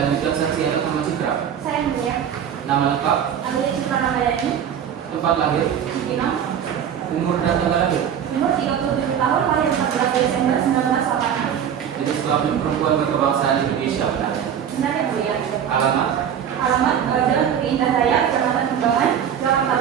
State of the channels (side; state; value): left; quieter; 8.8 dB